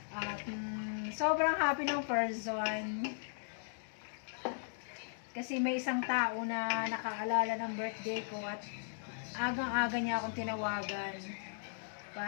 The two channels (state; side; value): silent; right; digital silence